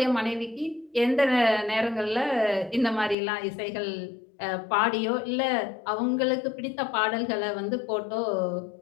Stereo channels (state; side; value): drops out; right; at 3.2 s